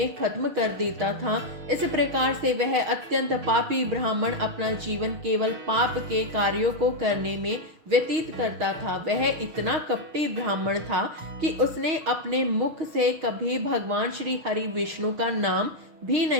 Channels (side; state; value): left; late; 6.4 ms